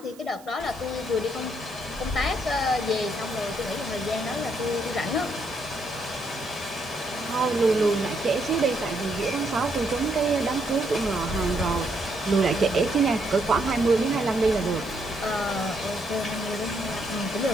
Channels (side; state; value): right; noise; hiss, 23 dB below the sound